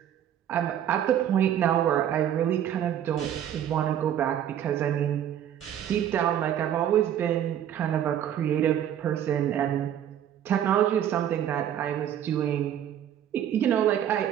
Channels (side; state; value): left; quieter; 10.3 dB